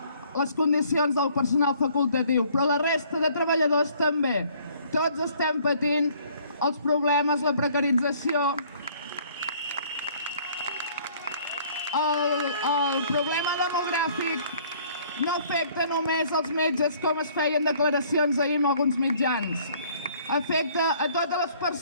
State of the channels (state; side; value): inverted; both; correlation -0.59